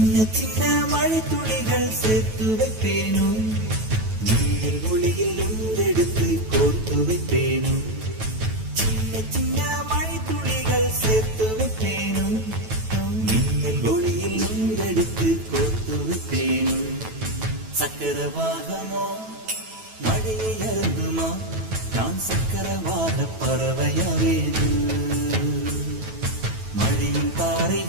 சின்ன மழை துளிகள் சேர்த்து வைப்பேனும், மின்னல் ஒளியில் உண்டெடுத்து கோர்த்து வைப்பேனும். சின்ன சின்ன மழை துளிகள் சேர்த்து வைப்பேனும், மின்னல் ஒளியில் உண்டெடுத்து கோர்த்து வைப்பேனும். சக்கரவாகமோ மழையை அருந்துமா, நான் சக்கரவாக பறவையாவேனும். மழையின்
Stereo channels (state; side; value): late; left; 9.2 ms